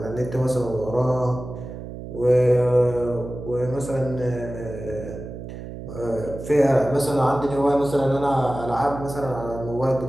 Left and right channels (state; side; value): noise; right; hum, 10 dB below the sound